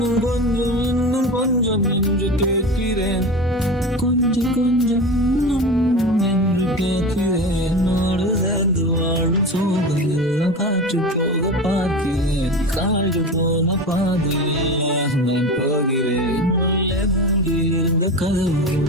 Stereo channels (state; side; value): normal; both; correlation 0.27